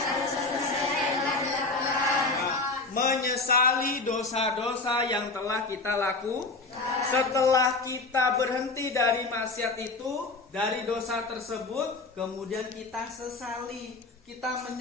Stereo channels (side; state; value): right; quieter; 3.5 dB